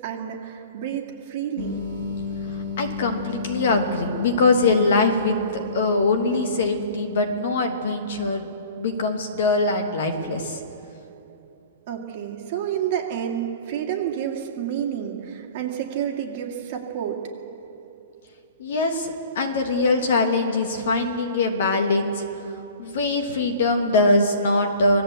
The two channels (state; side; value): inverted; both; correlation -0.44